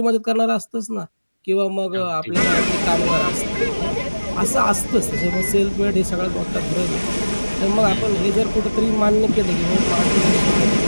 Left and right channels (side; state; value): both; inverted; correlation -1.00